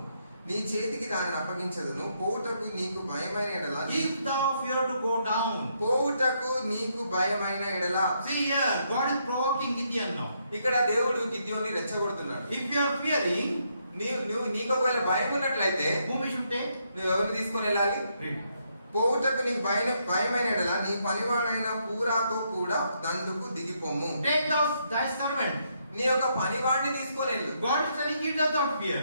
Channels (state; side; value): inverted; both; correlation -0.76